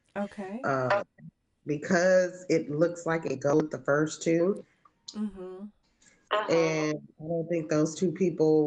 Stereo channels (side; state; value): both; identical; correlation 1.00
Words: Okay. Because it looks like it goes with the first two. Mm-hmm. And I don't think those two people